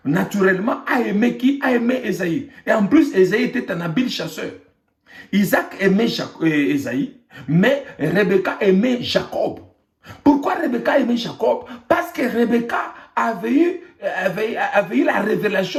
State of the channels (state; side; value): identical; both; correlation 1.00